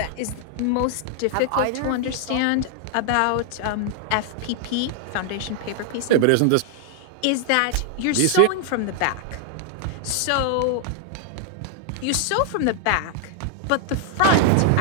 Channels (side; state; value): both; different; correlation 0.00